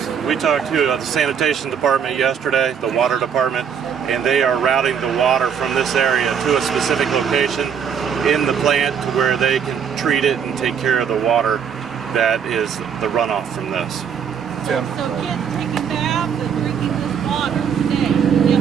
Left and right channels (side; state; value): left; quieter; 7.5 dB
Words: we talked to the sanitation department yesterday, the water department, and they are routing the water from this area to a specific location in the plant to where they can treat it and take care of the water that is the runoff from this. Tim? So kids taking baths and drinking this water today?